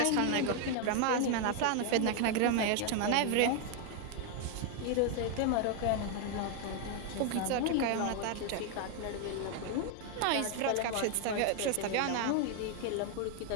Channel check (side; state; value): both; different; correlation 0.00